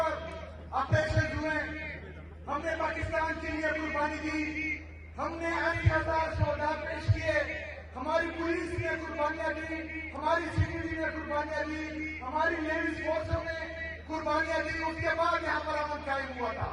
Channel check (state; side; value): identical; both; correlation 1.00